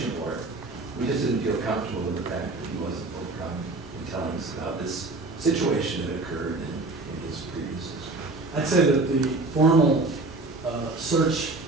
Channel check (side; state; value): left; quieter; 3.2 dB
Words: for it. We just didn't feel comfortable with the fact that he wasn't forthcoming in telling us about this situation that occurred in his previous history. I'd say that the formal search